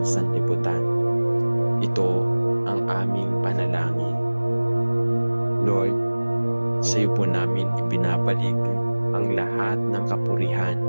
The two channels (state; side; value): inverted; both; correlation -1.00